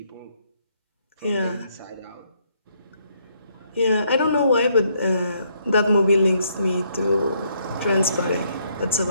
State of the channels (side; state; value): both; inverted; correlation -0.72